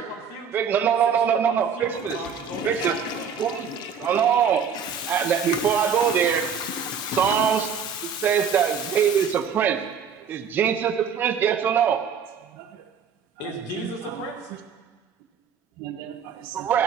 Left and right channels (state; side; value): quieter; left; 6.8 dB